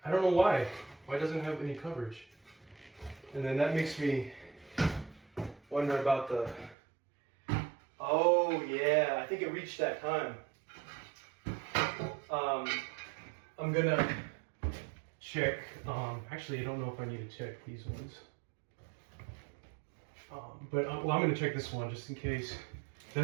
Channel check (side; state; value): left; drops out; at 6.8 s